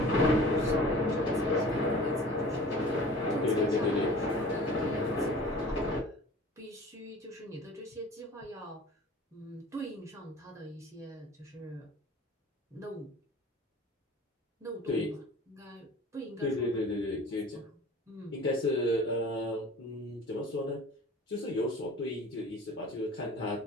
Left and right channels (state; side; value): normal; both; correlation 0.43